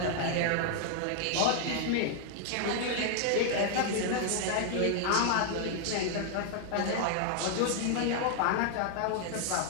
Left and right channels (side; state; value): both; different; correlation 0.00